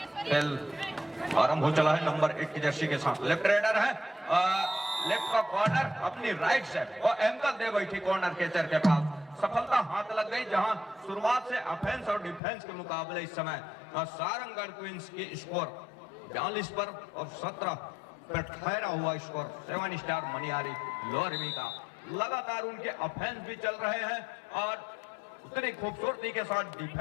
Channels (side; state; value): right; drops out; at 12.4 s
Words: खेल आरंभ हो चला है नंबर 1 की जर्सी के साथ। लेफ्ट रेडर है, लेफ्ट का कॉर्नर अपनी राइट से और एंकल दे बैठी कॉर्नर कैचर के पास, सफलता हाथ लग गई। जहां शुरुआत से ऑफेंस और डिफेंस के मुकाबले इस समय सारंगढ़ क्वींस की स्कोर 42 पर और 17 पर ठहरा हुआ स्कोर 7 स्टार मनियारी लोरमी का। लगातार उनके ऑफेंस भी चल रहे हैं और उतनी खूबसूरती के साथ